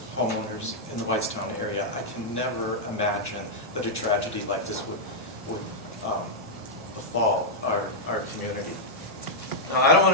homeowners in the Whitestown area, I can never imagine that a tragedy like this would befall our community. Now, I don't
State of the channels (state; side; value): normal; both; correlation -0.05